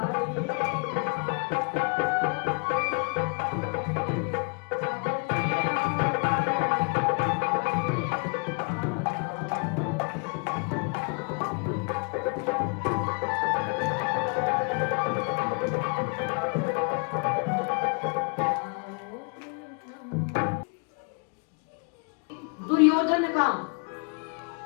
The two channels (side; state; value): right; quieter; 34.8 dB